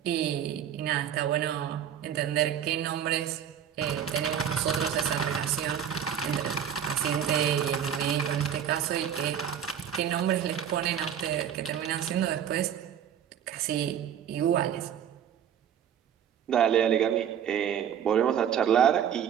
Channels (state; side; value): quieter; left; 9.1 dB